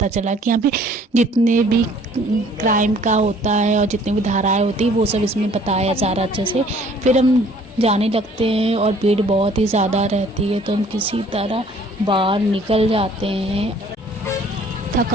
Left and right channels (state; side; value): normal; both; correlation 0.56